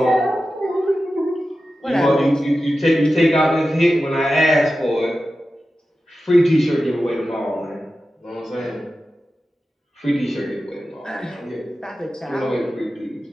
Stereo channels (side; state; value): both; normal; correlation 0.93